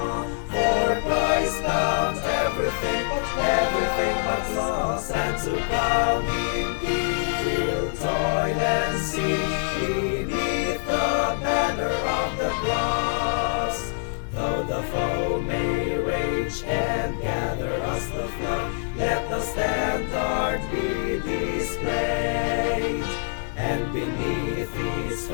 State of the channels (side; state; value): right; silent; digital silence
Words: for Christ bound everything, everything but loss, and to crown Him heal, toil and see, beneath the banner of the cross. Though the foe may rage and gather us the flood, let the standard be displayed, and beneath its